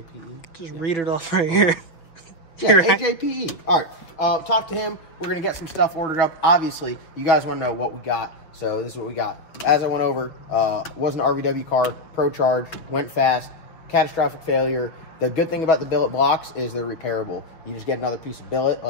Just read it off right here. Yeah, AJPE. All right. Talk to him. We're going to get some stuff ordered up. Obviously, you guys want to know what we got. So this is what we got. As I went over, was an RVW car, Pro Charge, went fast, catastrophic failure, The good thing about the billet blocks is they're repairable. You just get another piece of billet,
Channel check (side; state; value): right; late; 6.5 ms